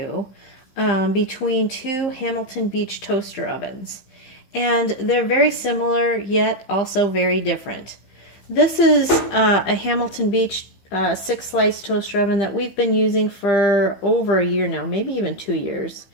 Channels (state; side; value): late; right; 15 ms